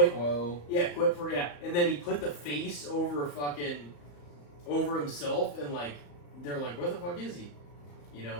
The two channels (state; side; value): late; right; 34 ms